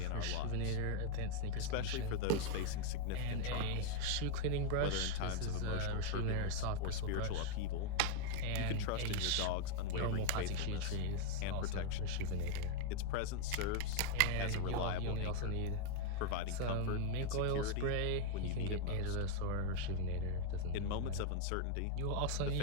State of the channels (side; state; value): both; different; correlation 0.00